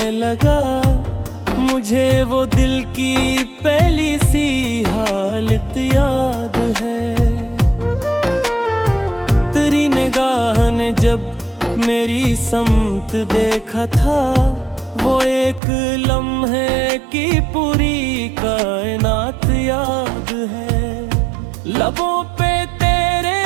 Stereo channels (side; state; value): left; drops out; at 15.6 s